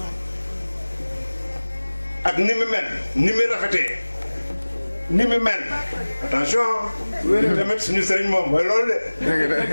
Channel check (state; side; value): inverted; both; correlation -1.00